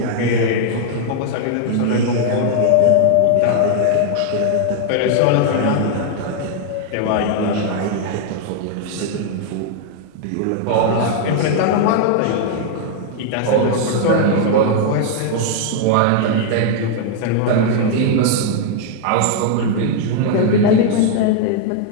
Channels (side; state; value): both; different; correlation 0.00